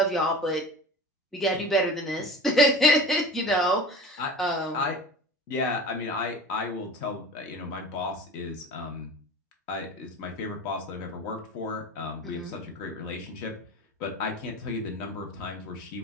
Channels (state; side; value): normal; both; correlation 0.36